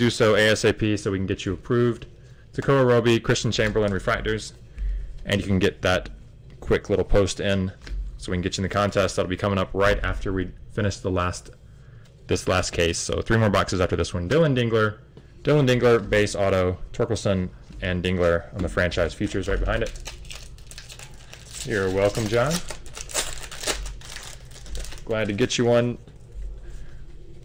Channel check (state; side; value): identical; both; correlation 1.00